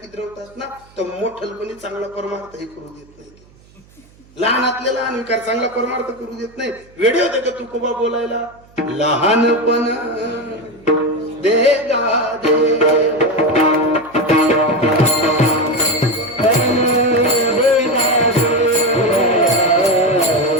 किद्रवतात ना तर मोठलपणी चांगला परमार्थही करू देत नाही. लहानातले लहान विकार चांगला परमार्थ करू देत नाही. वेळे होते का तुकोबा बोलायला लहानपण देगा देवा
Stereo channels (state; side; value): noise; right; hum, 28 dB below the sound